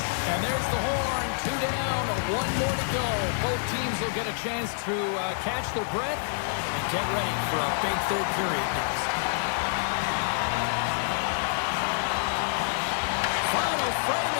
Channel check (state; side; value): silent; right; 60 dB below the other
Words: And there's the horn. 2 down, 1 more to go. Both teams will get a chance to catch their breath and get ready for a big third period next. Final frame